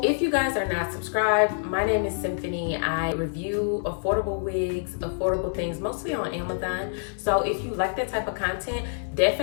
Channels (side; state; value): right; silent; digital silence